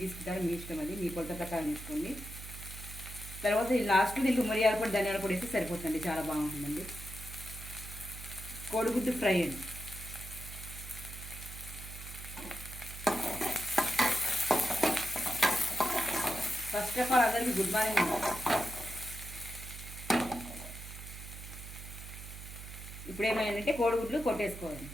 తీసుకుంటారో మీ ఇష్టం, అది మీ కొలత ప్రకారం తీసుకోండి. తర్వాత లాస్ట్ దీనికి మిరియాల పొడి, ధనియాల పొడి వేస్తే సరిపోతుంది, చాలా బాగుంటుందండి. కోడిగుడ్డు ఫ్రై అండి. ఫస్ట్ ఆఫ్ ఆల్ అందరికీ గుడ్ మార్నింగ్. ఇప్పుడు ఏమైందంటే కోడిగుడ్లు కొట్టేసుకోవాలి.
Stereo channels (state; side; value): noise; right; hum, 11 dB below the sound